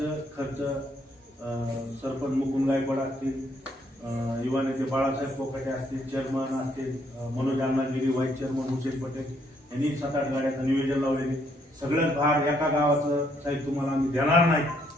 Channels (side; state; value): both; normal; correlation 0.70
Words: खर्च सरपंच मुकुंद गायकवाड असतील युवा नेते बाळासाहेब कोकाटे असतील चेअरमन असतील मनोज अण्णागिरी व्हाईस चेअरमन हुसेन पटेल यांनी 7-8 गाड्याचं नियोजन लावलेले सगळ्यात भार एका गावाचं साहेब तुम्हाला आम्ही देणार नाही